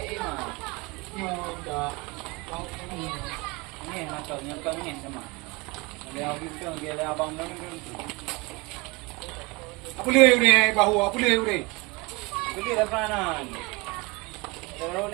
mah. Dah. Ni macamnya pengen sama. Dia kita dia abang mana tu. Apa le ni bahu apa le ni? Beli lapanan. Terus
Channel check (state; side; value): quieter; left; 25.8 dB